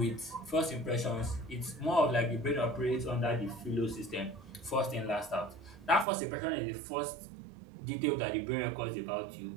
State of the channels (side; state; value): left; drops out; at 6.1 s